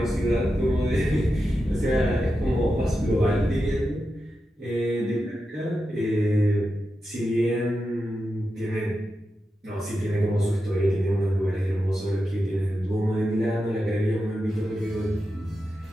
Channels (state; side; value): normal; both; correlation 0.89